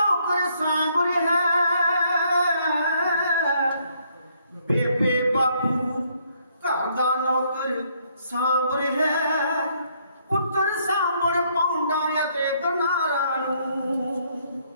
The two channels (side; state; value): both; inverted; correlation -0.69